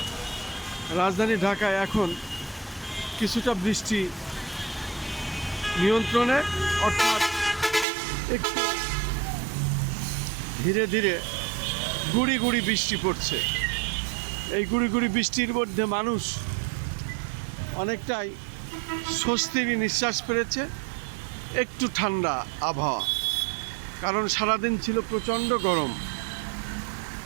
রাজধানী ঢাকায় এখন কিছুটা বৃষ্টি নিয়ন্ত্রণে, অর্থাৎ একটু ধীরে ধীরে গুড়ি গুড়ি বৃষ্টি পড়ছে। এই গুড়ি গুড়ি বৃষ্টির মধ্যে মানুষ অনেকটাই স্বস্তির নিঃশ্বাস পেরেছে। একটু ঠান্ডা আবহাওয়া, কারণ সারাদিন ছিল প্রচণ্ড গরম।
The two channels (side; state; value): left; drops out; at 7.9 s